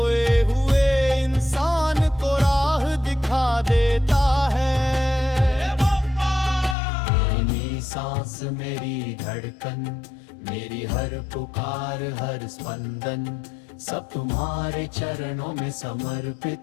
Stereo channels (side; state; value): right; drops out; at 6.8 s